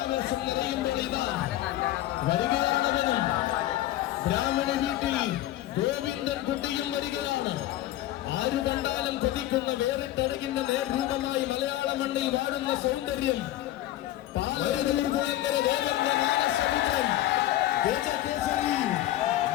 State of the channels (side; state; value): right; quieter; 14.6 dB